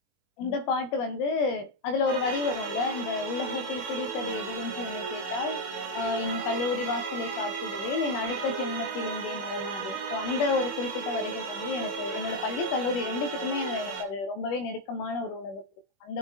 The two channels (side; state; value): right; late; 21 ms